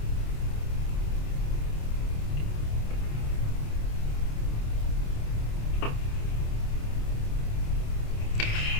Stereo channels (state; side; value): late; right; 27 ms